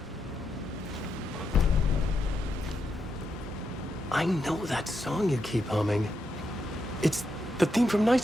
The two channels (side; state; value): both; normal; correlation 0.83